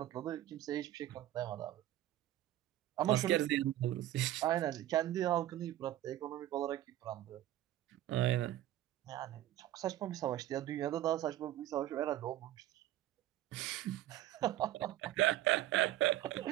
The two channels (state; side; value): quieter; left; 13.8 dB